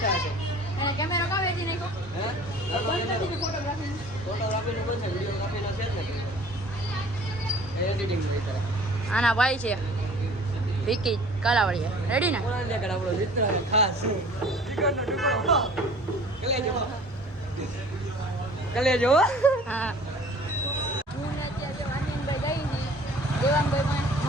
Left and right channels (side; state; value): both; normal; correlation 0.49